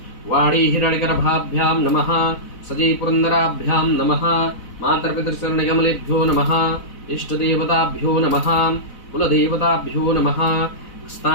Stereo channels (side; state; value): right; late; 4.0 ms